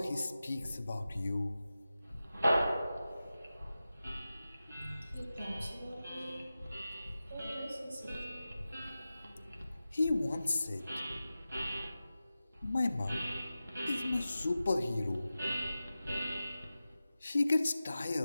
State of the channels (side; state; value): both; inverted; correlation -0.94